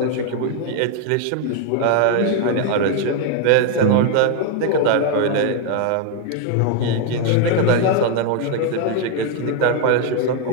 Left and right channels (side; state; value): both; different; correlation 0.00